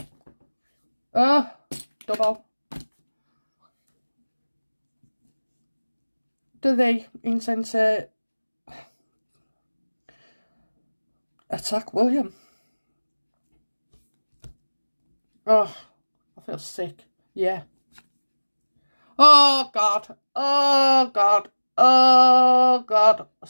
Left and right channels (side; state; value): both; inverted; correlation -1.00